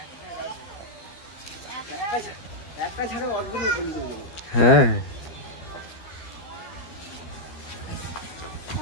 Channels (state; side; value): late; right; 12 ms